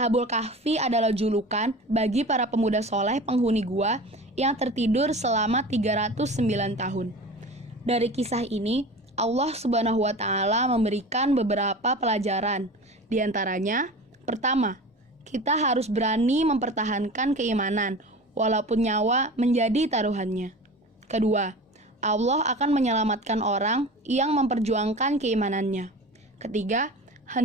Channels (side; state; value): both; normal; correlation 0.35